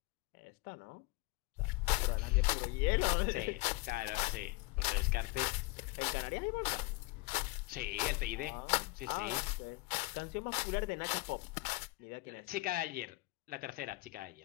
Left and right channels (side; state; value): right; quieter; 23.5 dB